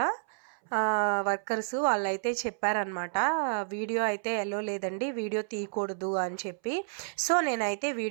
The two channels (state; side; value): silent; left; 58 dB below the other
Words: వర్కర్స్, వాళ్ళైతే చెప్పారనమాట వీడియో అయితే ఎలో లేదండి, వీడియో తీయకూడదు అని చెప్పి. సో నేనైతే